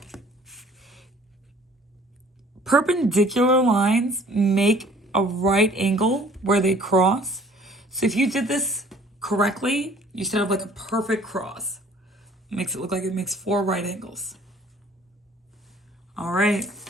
Perpendicular lines make a right angle where they cross. So if you did this correctly, you should have like a perfect cross. Makes it look like it makes 4 right angles. All right,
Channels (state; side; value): normal; both; correlation 0.54